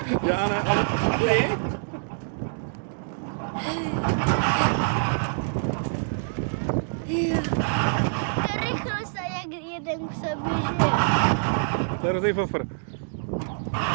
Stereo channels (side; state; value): left; silent; digital silence